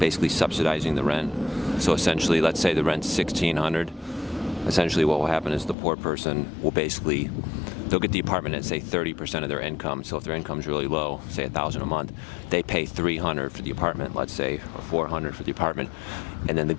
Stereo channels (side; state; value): right; drops out; at 5.8 s